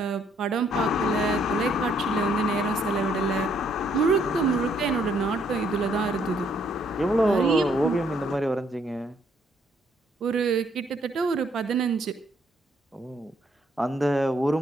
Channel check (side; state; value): both; normal; correlation 0.68